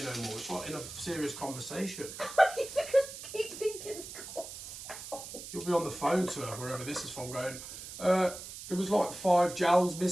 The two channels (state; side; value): noise; right; hiss, 11 dB below the sound